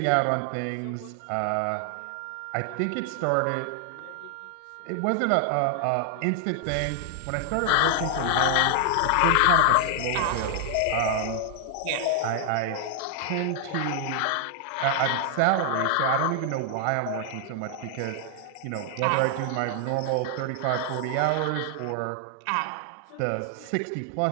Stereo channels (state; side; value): different; both; correlation 0.00